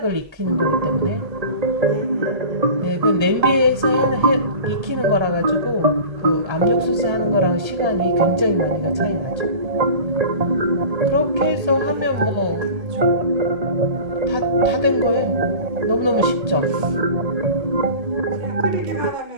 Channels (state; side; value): late; left; 1.3 ms